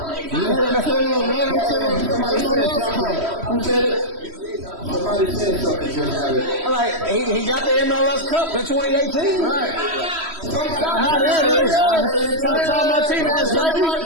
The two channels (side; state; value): left; late; 3.1 ms